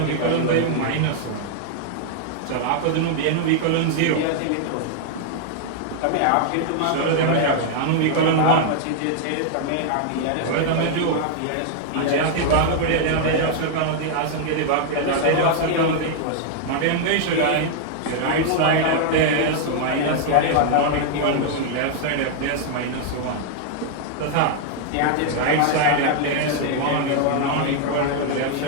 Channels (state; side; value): different; both; correlation 0.00